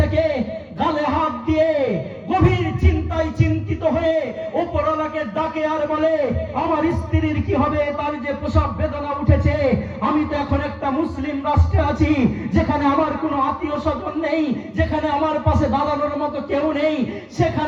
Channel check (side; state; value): both; identical; correlation 1.00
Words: থেকে গালে হাত দিয়ে গভীর চিন্তায় চিন্তিত হয়ে উপরওয়ালাকে ডাকে আর বলে, আমার স্ত্রীর কি হবে? তার যে প্রসব বেদনা উঠেছে। আমি তো এখন একটা মুসলিম রাষ্ট্রে আছি, যেখানে আমার কোনো আত্মীয় স্বজন নেই, যেখানে আমার পাশে দাঁড়ানোর মতো কেউ নেই।